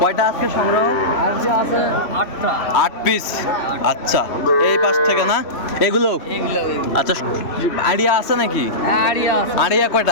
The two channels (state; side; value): late; right; 3.1 ms